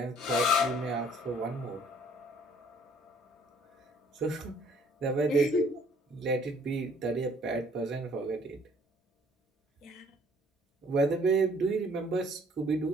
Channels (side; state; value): both; normal; correlation 0.59